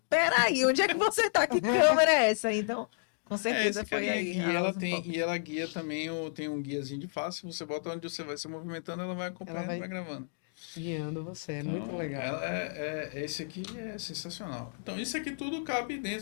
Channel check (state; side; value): silent; right; digital silence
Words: peraí, onde é que você tá? Que câmera é essa? Então, com certeza esse foi carinha aí. aqui. a Ela Osmo Pocket. e ela guia também, tem um guiazinho de face. Você bota onde você vai se movimentando, ela vai acompanhando e vai gravando. Guiando você. Então, muito legal. esse aqui é sensacional. Então, isso aqui tudo cabe